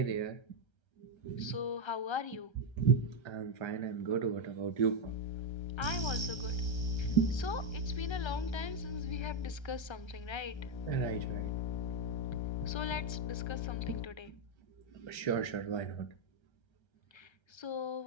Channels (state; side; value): late; right; 1.3 ms